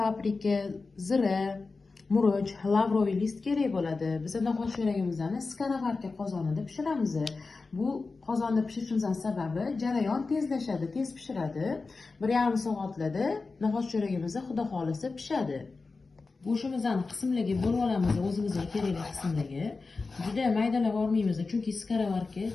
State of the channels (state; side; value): quieter; right; 4.0 dB